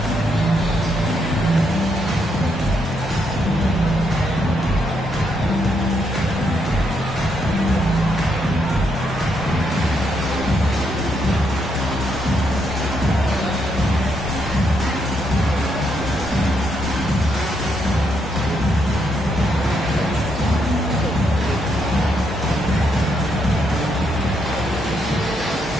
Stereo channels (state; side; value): normal; both; correlation 0.77